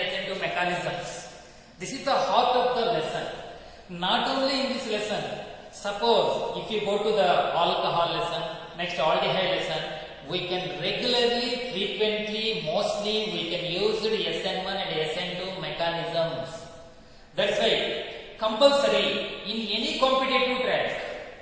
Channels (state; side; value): identical; both; correlation 1.00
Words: SN2 mechanisms. This is the heart of the lesson. Not only in this lesson, suppose if you go to the alcohol lesson, next aldehyde lesson, we can regularly, frequently, mostly we can use the SN1 and SN2 mechanisms. That's why compulsory in any competitive track,